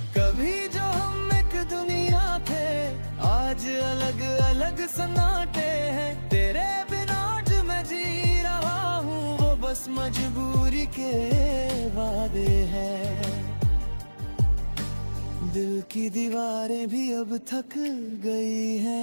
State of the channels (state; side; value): inverted; both; correlation -1.00